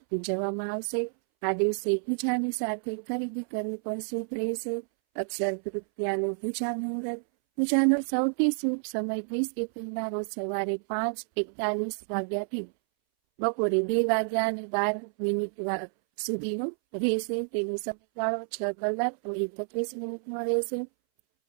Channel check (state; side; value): silent; left; 58 dB below the other